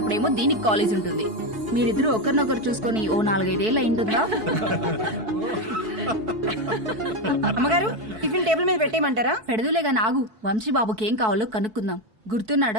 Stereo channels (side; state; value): left; late; 4.6 ms